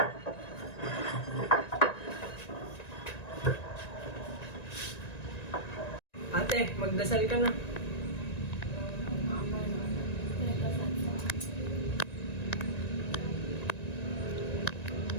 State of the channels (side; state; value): right; late; 1.9 ms